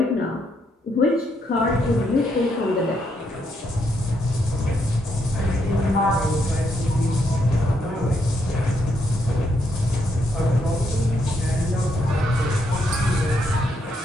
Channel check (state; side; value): normal; both; correlation 0.77